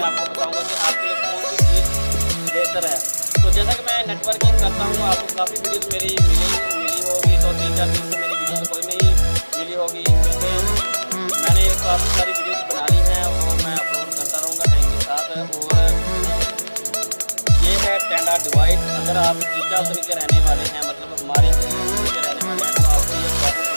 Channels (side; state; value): both; inverted; correlation -1.00